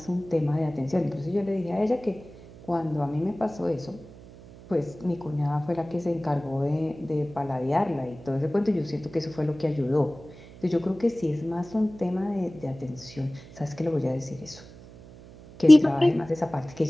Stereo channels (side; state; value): right; noise; hum, 19 dB below the sound